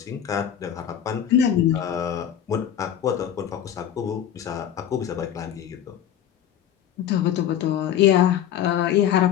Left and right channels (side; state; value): right; quieter; 10.1 dB